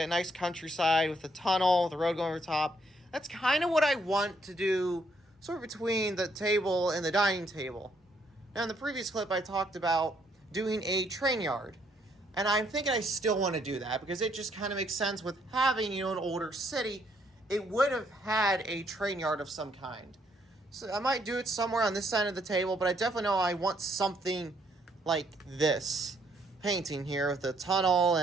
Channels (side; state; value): both; normal; correlation 0.70